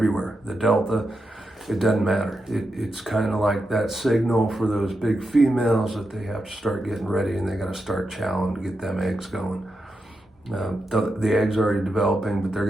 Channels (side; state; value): both; normal; correlation 0.87